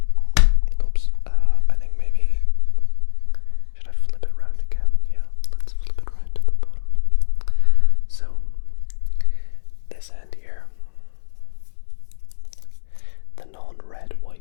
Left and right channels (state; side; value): silent; right; digital silence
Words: Oops, I think maybe, should I flip it round again? Yeah, let's flip it round to the bottom. So this end here, the non-red